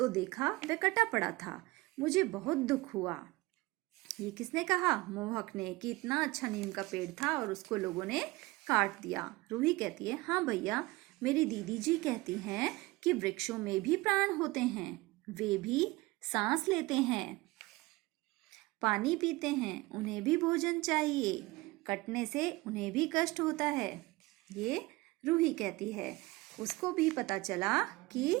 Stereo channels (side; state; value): left; quieter; 21.5 dB